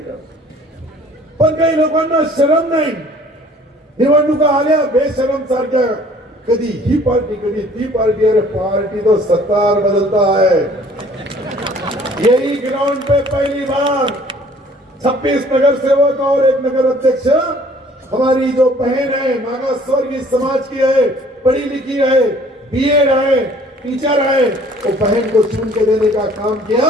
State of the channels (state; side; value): normal; both; correlation 0.54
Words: पण काही लोकांना शरम नाही, निवडणुका आल्या बेशरम सारख्या, कधी ही पार्टी कधी ती पार्टी। अरे पार्टी तो सत्तार बदलता है। यही ग्राउंड पे पहली बार 26 नगर सेवक और 1 नगर अध्यक्ष, हमारी जो बहन है मागास वर्गीय समाज की है, पढ़ी लिखी है, बीएड है, टीचर है, तो बहन को चुन के देने का काम किया,